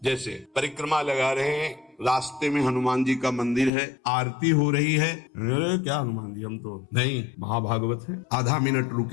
जैसे परिक्रमा लगा रहे हैं, रास्ते में हनुमान जी का मंदिर है, आरती हो रही है, अरे क्या हनुमान जी, हम तो नहीं, महाभागवत है। आधा मिनट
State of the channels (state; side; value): drops out; right; at 3.7 s